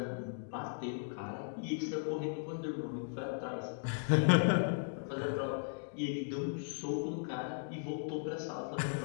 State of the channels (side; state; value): right; silent; digital silence